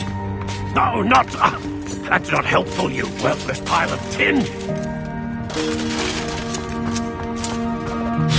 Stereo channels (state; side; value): identical; both; correlation 1.00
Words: No, not... that's not helpful, you worthless pile of tin!